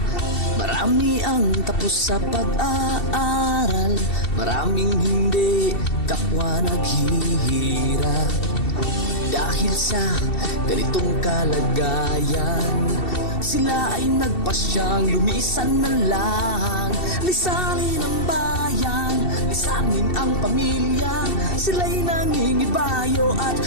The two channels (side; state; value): right; late; 2.7 ms